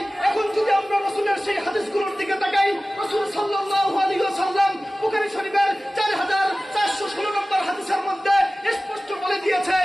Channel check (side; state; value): both; normal; correlation 0.97